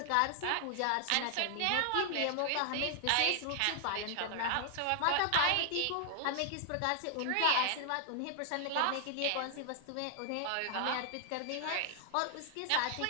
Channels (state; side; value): different; both; correlation 0.00